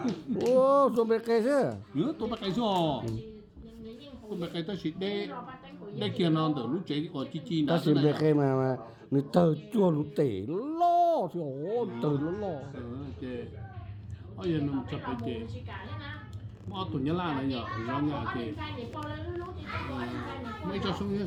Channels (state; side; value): identical; both; correlation 1.00